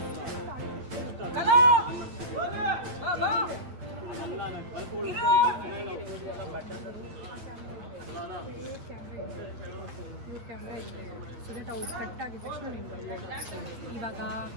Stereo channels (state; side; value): late; left; 8.7 ms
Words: camera ಇದೆ so that ಅವು cut ಆಗಿದ ತಕ್ಷಣ ನೀನು ಬರ್ಬೋದು. ಇವಾಗ